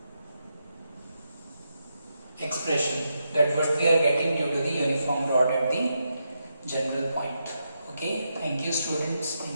expression, that what we are getting due to the uniform rod at the general point. Okay, thank you students,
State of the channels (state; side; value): inverted; both; correlation -0.84